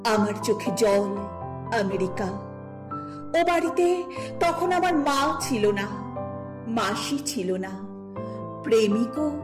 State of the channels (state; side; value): identical; both; correlation 1.00